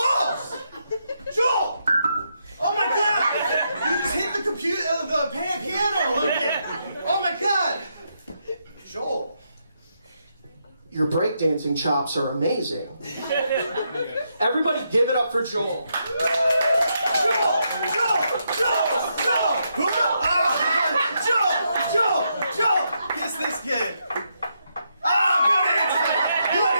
Joel! Oh my God! You just hit the computer, the piano a little bit. Oh my God! Joel, your breakdancing chops are amazing. Everybody, give it up for Joel. Joel! Kiss this kid. Oh, good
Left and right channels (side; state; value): both; inverted; correlation -0.80